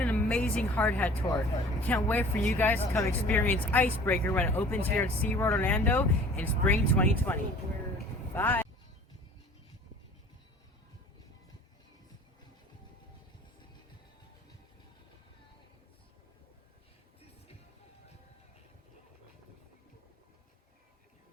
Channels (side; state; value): both; normal; correlation 0.47